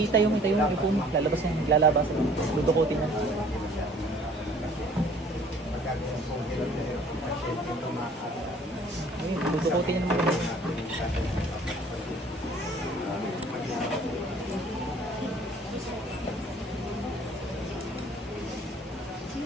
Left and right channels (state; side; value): normal; both; correlation 0.54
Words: mo, ipo mo. Lalabas yan, lalabas. Dudukutin yan. Ayun, dudukutin yan naman.